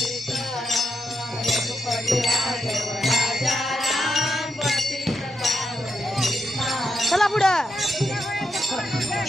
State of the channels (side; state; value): both; normal; correlation 0.84